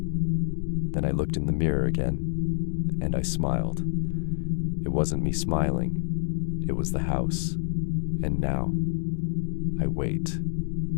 Then I looked in the mirror again, and I smiled. It wasn't me smiling, it was the house. And now, I wait,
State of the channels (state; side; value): silent; right; digital silence